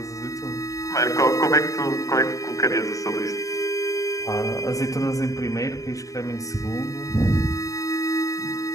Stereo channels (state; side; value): late; right; 0.16 ms